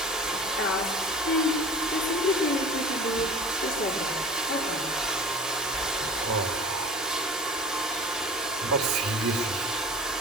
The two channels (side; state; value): both; normal; correlation 0.40